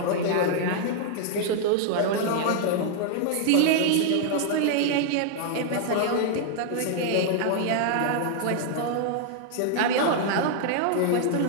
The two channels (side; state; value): both; different; correlation -0.01